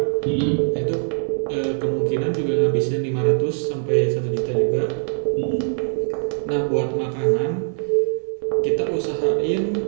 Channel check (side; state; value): left; silent; 63 dB below the other